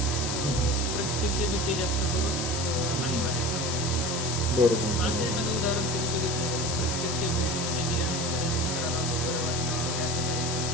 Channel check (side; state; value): left; noise; hiss, 3 dB below the sound